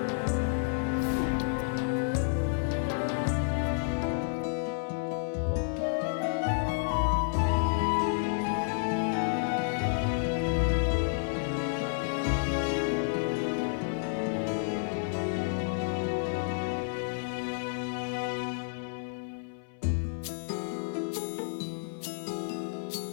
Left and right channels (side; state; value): right; silent; 57 dB below the other